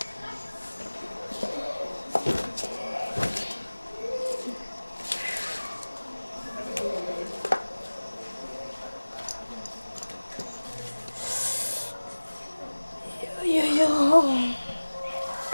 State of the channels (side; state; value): both; inverted; correlation -1.00